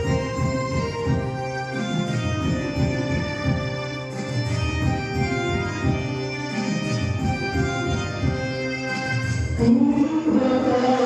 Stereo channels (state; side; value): identical; both; correlation 1.00